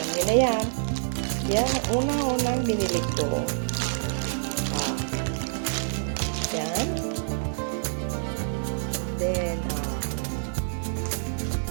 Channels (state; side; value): silent; left; 60 dB below the other